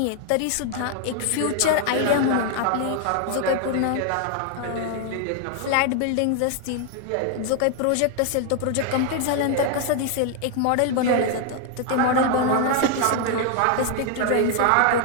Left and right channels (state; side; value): different; both; correlation 0.00